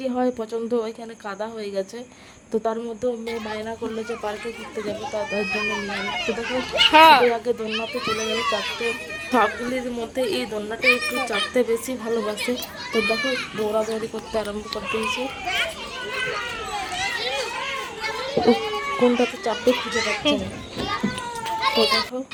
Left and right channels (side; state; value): both; identical; correlation 1.00